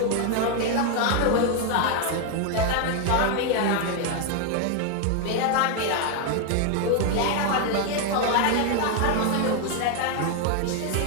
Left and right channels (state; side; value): different; both; correlation 0.01